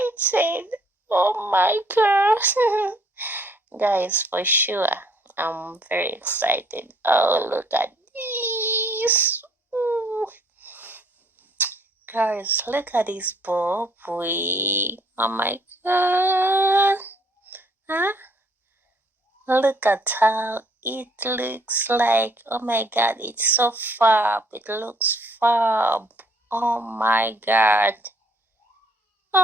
Oh my god. Guys, for sure, I'm very excited. Oh, look at this. Ooh. Guys, look at this bob wig. Oh my god. Huh? Look at how it looks like. Oh my god, it's so fab. It looks fab. Oh my god.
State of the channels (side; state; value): both; normal; correlation 0.63